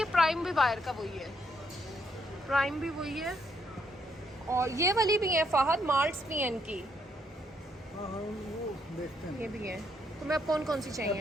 प्राइम भी बाहर का वही है, प्राइम भी वही है। और ये वाली भी है फहद, मार्ट्स भी है इनकी। हाँ हाँ वो देखते हैं। ये भी है। तुम्हें अब कौन कौन सी चाहिए?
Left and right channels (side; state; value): both; normal; correlation 0.74